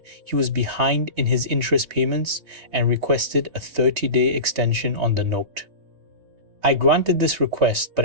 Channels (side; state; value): left; late; 3.3 ms